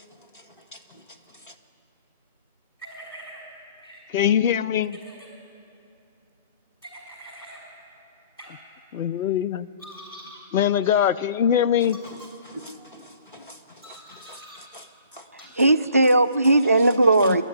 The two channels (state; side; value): inverted; both; correlation -0.56